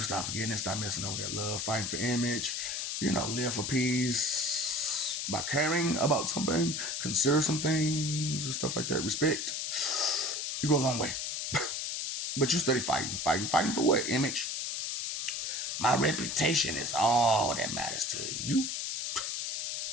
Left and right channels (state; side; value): noise; left; hiss, 2 dB below the sound